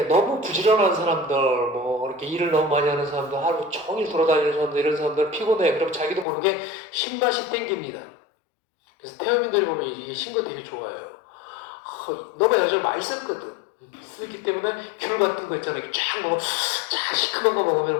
너무 부지런한 사람들, 뭐 이렇게 일을 너무 많이 하는 사람들, 하루 종일 돌아다니는 사람들, 이런 사람들 피곤해. 그럼 자기도 모르게 신맛이 땡깁니다. 그래서 태어민들이 보면 이게 신거 되게 좋아해요. 너가 예전에 많이 썼거든. 쓰기 때문에 귤 같은 거 있잖아. 이렇게 쫙 먹으면, 쫙 시큼한 거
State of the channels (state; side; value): drops out; right; at 6.2 s